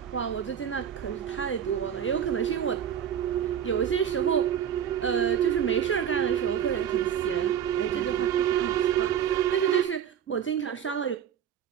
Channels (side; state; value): left; quieter; 9.0 dB